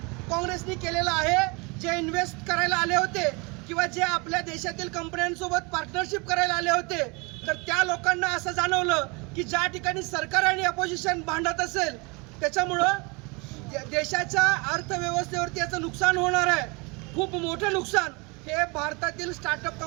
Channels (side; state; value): left; quieter; 28.7 dB